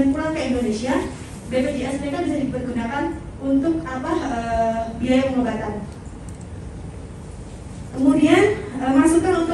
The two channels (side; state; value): both; identical; correlation 1.00